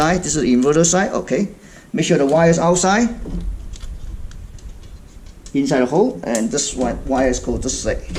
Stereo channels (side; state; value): both; identical; correlation 1.00